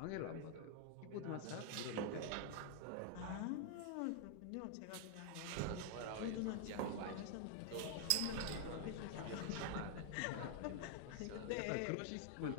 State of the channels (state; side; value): different; both; correlation 0.00